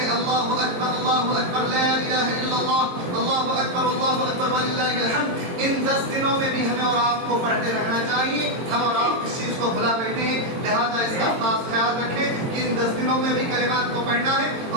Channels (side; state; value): left; late; 22 ms